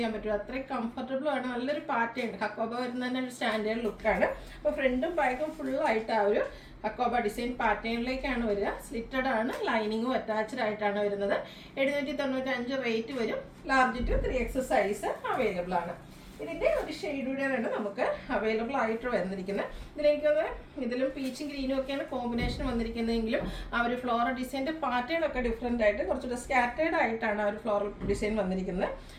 പറ്റും. അത്രയും കംഫർട്ടബിൾ ആണ്. നല്ലൊരു പാറ്റേൺ ഹക്കോബ വരുന്ന തന്നെ ഒരു സ്റ്റാൻഡേർഡ് ലുക്കാണ്. അപ്പോൾ ഫ്രണ്ടും ബാക്കും ഫുള്ളായിട്ട് ആ ഒരു ഹക്കോബ ഡിസൈൻ പാറ്റേണിലേക്കാണ് വരിക. സ്ലിറ്റഡ് ആണ്. ലൈനിങ്ങും അറ്റാച്ച്ഡ് ആയിട്ടാണ് വരുന്നത്. 795 റേറ്റ് വരും. Large to 3XS size available ആണ്. ഇതിൻ്റെ ഒരു ഷെയ്ഡുകൂടെയാണ് നമുക്ക് അവൈലബിൾ ആയിട്ട് വന്നിരിക്കുന്നത്. ഇതിലും പീച്ചും ഗ്രീനും ഒക്കെയാണ് കോമ്പിനേഷൻ വന്നിരിക്കുന്നതെങ്കിലും ആ ഒരു ഫ്ലോറൽ ഡിസൈൻ്റെ പാറ്റേൺ ഒക്കെ ഡിഫറെൻ്റ് ആയിട്ട് കുറച്ചുകൂടെ സ്കാറ്റേർഡ് ആയിട്ടാണ് ആ ഒരു ഫ്ലോറൽ ഡിസൈൻ വന്നിരിക്കുന്നത്.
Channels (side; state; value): both; identical; correlation 1.00